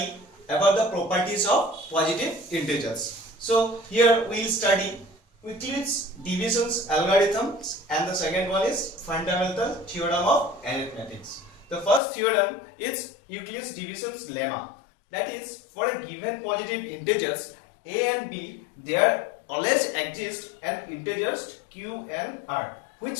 about the properties of positive integers. So here we will study Euclid's divisions algorithms, and the second one is fundamental theorem of arithmetics. The first theorem is Euclid's divisions lemma. That is, for a given positive integers a and b, there always exist an integers q and r which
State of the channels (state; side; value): drops out; right; at 12.0 s